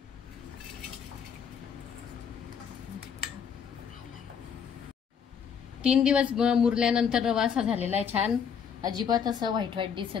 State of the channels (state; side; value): quieter; right; 7.2 dB